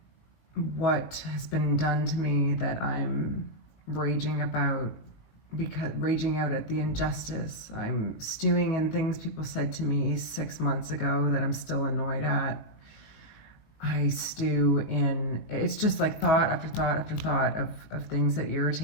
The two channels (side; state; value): right; late; 19 ms